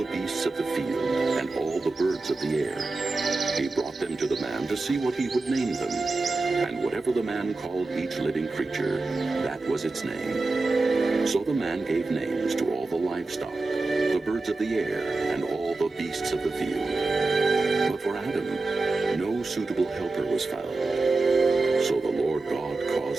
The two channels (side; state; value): left; quieter; 3.4 dB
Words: beasts of the field and all the birds of the air. He brought them to the man to see what he would name them. And whatever the man called each living creature, that was its name. So the man gave names to all the livestock, the birds of the air, and all the beasts of the field. But for Adam, no suitable helper was found. So the Lord God